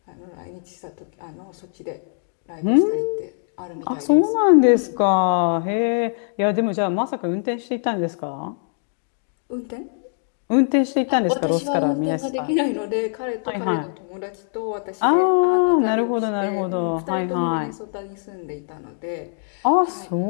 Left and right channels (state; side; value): silent; right; digital silence